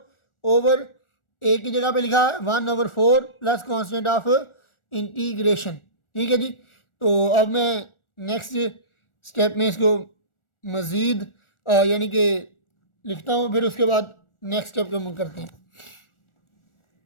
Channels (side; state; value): right; late; 1.4 ms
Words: over A की जगह पे लिखा 1/4 प्लस कांस्टेंट ऑफ इंटीग्रेशन। ठीक है जी। तो अब मैं नेक्स्ट स्टेप में इसको मज़ीद यानी कि लिखता हूँ, फिर उसके बाद नेक्स्ट स्टेप को हम करते हैं।